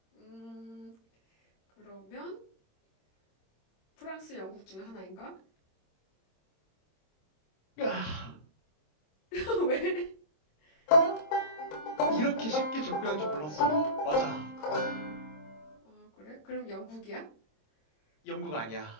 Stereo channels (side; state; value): right; late; 26 ms